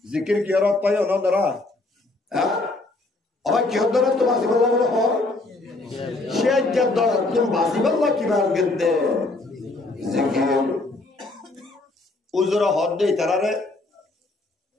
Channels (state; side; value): quieter; right; 3.0 dB